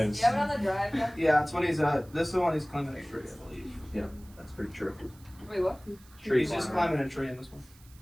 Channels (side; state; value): right; noise; hiss, 26 dB below the sound